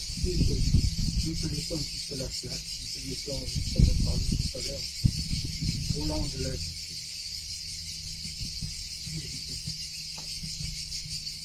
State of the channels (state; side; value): identical; both; correlation 1.00